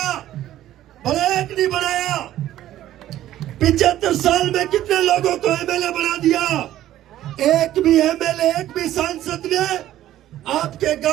बनाया कि नहीं बनाया? 75 साल में कितने लोगों को एमएलए बना दिया? एक भी एमएलए, एक भी सांसद ने आपके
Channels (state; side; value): quieter; left; 13.3 dB